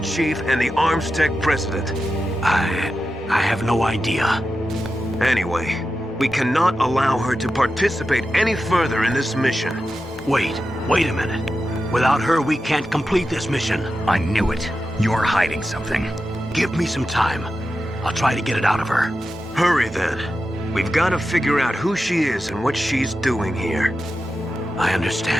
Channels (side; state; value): both; normal; correlation 0.91